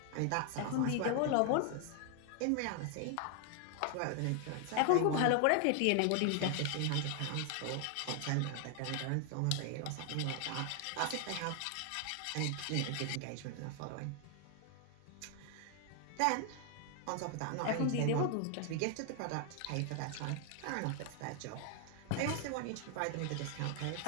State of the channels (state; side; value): different; both; correlation 0.00